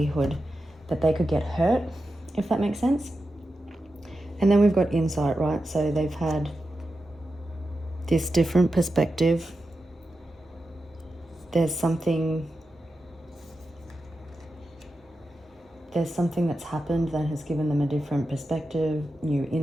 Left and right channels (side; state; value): both; normal; correlation 0.90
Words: that they could get hurt, if that makes sense. And then we've got insight, right? So they've had this different perspective. There's something that's happened that has given them a different perspective, new